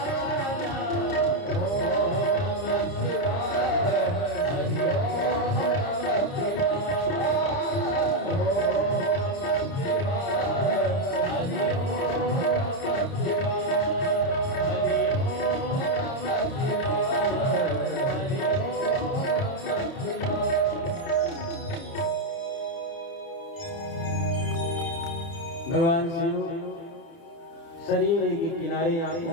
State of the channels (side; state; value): right; late; 30 ms